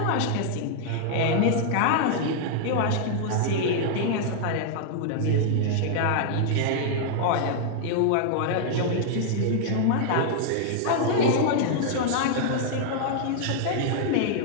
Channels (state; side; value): different; both; correlation -0.01